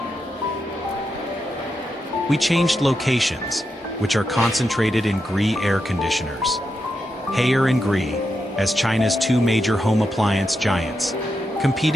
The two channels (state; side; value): normal; both; correlation 0.86